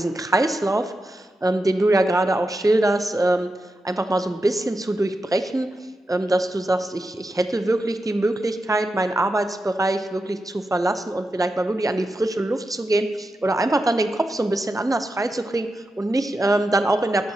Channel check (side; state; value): both; normal; correlation 0.89